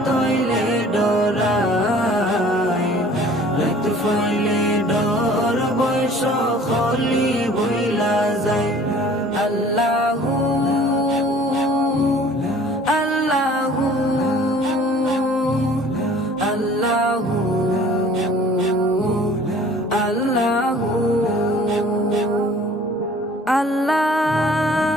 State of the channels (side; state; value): both; normal; correlation 0.50